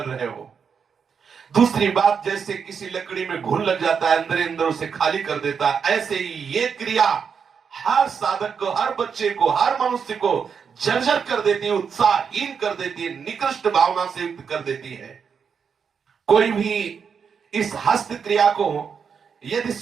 रहे हो। दूसरी बात, जैसे किसी लकड़ी में घुन लग जाता है, अंदर अंदर उसे खाली कर देता है, ऐसे ही ये क्रिया हर साधक को, हर बच्चे को, हर मनुष्य को जर्जर कर देती है, उत्साहहीन कर देती है, निकृष्ट भावना से युक्त कर देती है। कोई भी इस हस्त क्रिया को यदि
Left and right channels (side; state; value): left; quieter; 6.5 dB